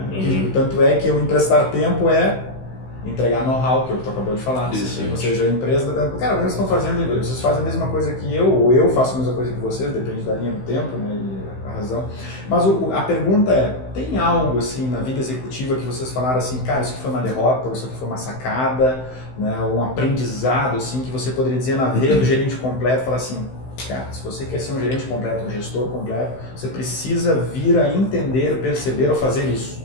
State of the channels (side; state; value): right; late; 16 ms